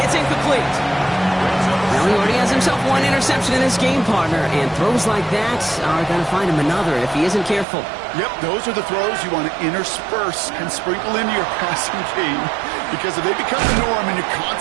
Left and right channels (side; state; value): left; drops out; at 7.7 s